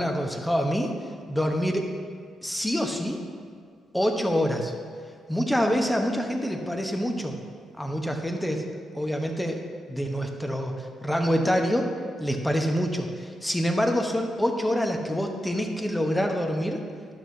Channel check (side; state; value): both; normal; correlation 0.90